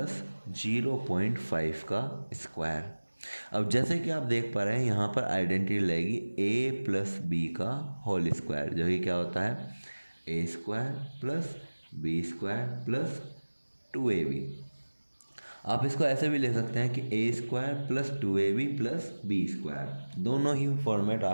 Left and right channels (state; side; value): inverted; both; correlation -1.00